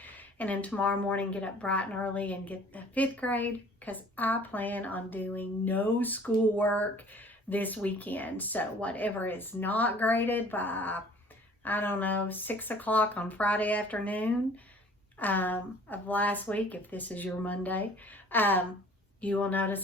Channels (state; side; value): normal; both; correlation 0.51